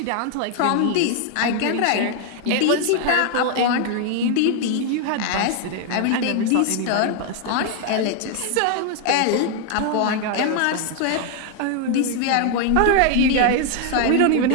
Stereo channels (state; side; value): different; both; correlation 0.00